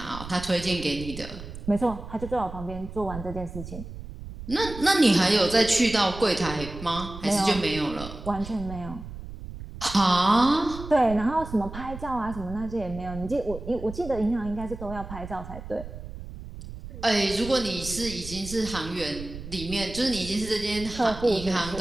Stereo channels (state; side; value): noise; right; rumble, 11 dB below the sound